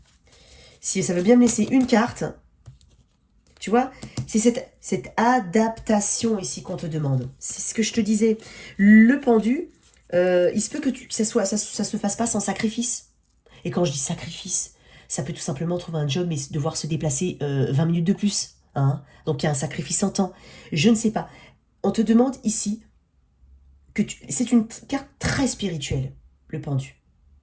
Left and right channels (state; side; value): identical; both; correlation 1.00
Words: Si ça veut bien me laisser une carte... Tu vois, c'est cette adaptation ici qu'on te demande. C'est ce que je te disais. Le pendu, il se peut que ça se fasse pas sans sacrifice. Et quand je dis sacrifice, ça peut tout simplement trouver un job, mais devoir se déplacer 20 minutes de plus. Hein. Donc il y a un sacrifice en temps. Je ne sais pas. On te demande ici c'est une carte très spirituelle, le pendu.